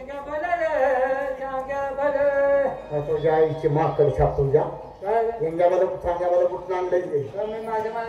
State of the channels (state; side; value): identical; both; correlation 1.00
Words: तुझ्या आईची माकड छाप तुझ्या यांच्यामध्ये सांग्यामध्ये कुठून आणलंय ते माझ्या